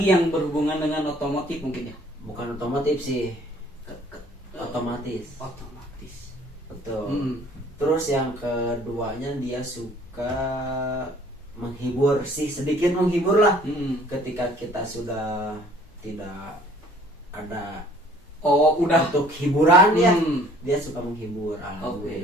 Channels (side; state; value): both; normal; correlation 0.56